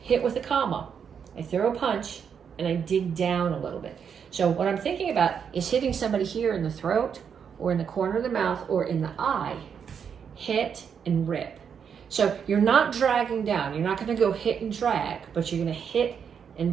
hit with a comma, I throw a punch and I dig down a little bit. So what I'm thinking about is hitting somebody here in the throat or in the corner of the mouth or in the eye. Hit and rip. So you're not dragging down. You're not going to go hit and drag, but you're going to hit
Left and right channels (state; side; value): quieter; left; 7.2 dB